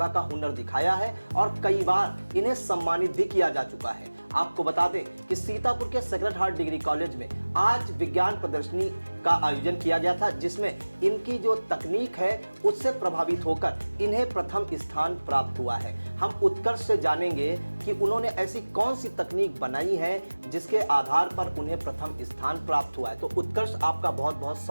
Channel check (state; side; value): inverted; both; correlation -1.00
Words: का हुनर दिखाया है और कई बार इन्हें सम्मानित भी किया जा चुका है। आपको बता दें कि सीतापुर के सेक्रेड हार्ट डिग्री कॉलेज में आज विज्ञान प्रदर्शनी का आयोजन किया गया था, जिसमें इनकी जो तकनीक है उससे प्रभावित होकर इन्हें प्रथम स्थान प्राप्त हुआ है। हम उत्कर्ष से जानेंगे कि उन्होंने ऐसी कौन सी तकनीक बनाई है जिसके आधार पर उन्हें प्रथम स्थान प्राप्त हुआ है। तो उत्कर्ष, आपका बहुत बहुत